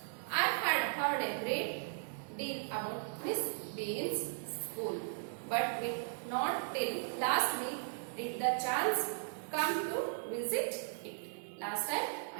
I had heard a great deal about Miss Bean's school, but not till last week did the chance come to visit it. Last time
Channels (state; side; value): silent; left; digital silence